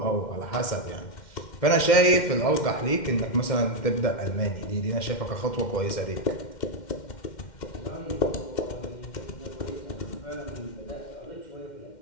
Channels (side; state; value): right; late; 2.1 ms